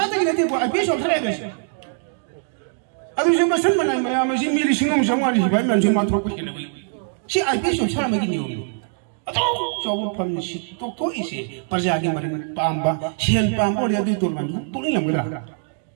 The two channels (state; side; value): silent; left; digital silence